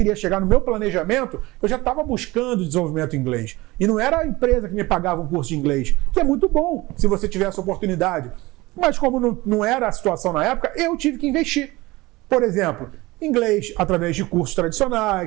chegar no meu planejamento, eu já estava buscando desenvolvimento em inglês. E não era a empresa que me pagava um curso de inglês, que é muito bom se você tiver essa oportunidade. Mas como não era a situação na época, eu tive que investir. Por exemplo, inglês através de cursos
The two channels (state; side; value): quieter; left; 20.7 dB